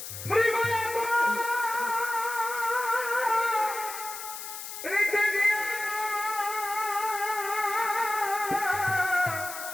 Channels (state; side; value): noise; left; hiss, 9 dB below the sound